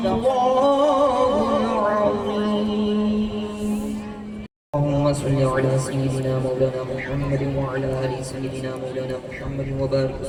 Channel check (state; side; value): identical; both; correlation 1.00